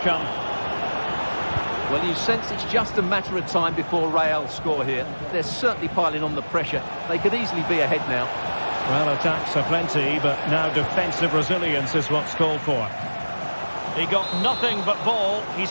Well, you sense it's just a matter of time before Real score here. They're certainly piling on the pressure. They could easily be ahead now. Well, attacks are plenty, but now defensive resilience is what's called for. He got nothing but ball. He's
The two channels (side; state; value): both; inverted; correlation -1.00